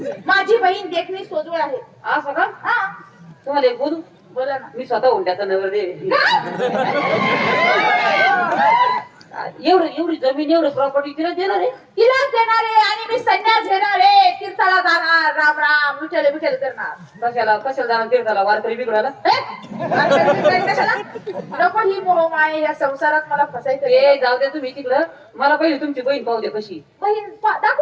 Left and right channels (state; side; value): identical; both; correlation 1.00